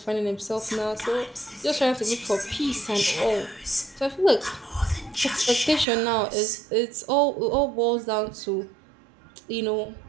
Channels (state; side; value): drops out; left; at 5.9 s